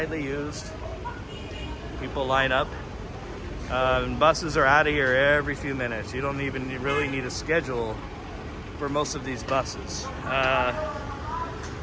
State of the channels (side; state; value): both; identical; correlation 1.00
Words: used. People line up. Buses are out of here every few minutes. You don't even really need a schedule for most of these buses.